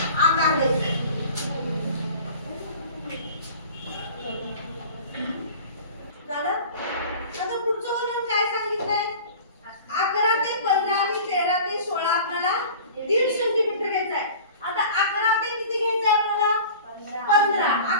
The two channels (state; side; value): inverted; both; correlation -0.40